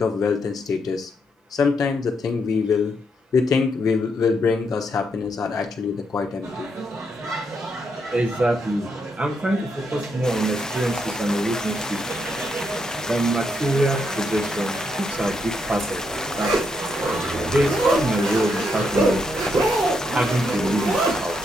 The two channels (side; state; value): both; normal; correlation 0.78